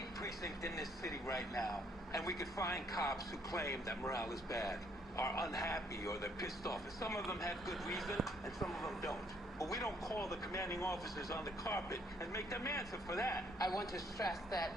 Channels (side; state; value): both; normal; correlation 0.67